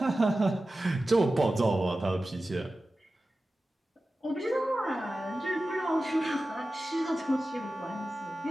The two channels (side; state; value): both; normal; correlation 0.95